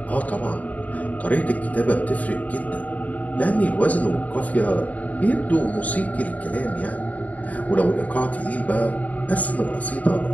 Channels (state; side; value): late; right; 0.072 ms